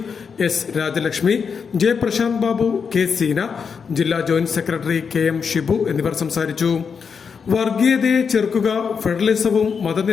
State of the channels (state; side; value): quieter; right; 6.1 dB